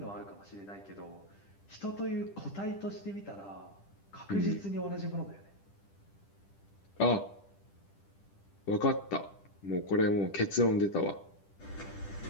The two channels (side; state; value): right; late; 10 ms